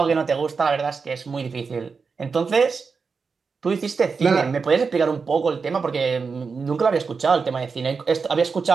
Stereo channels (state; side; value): quieter; left; 5.1 dB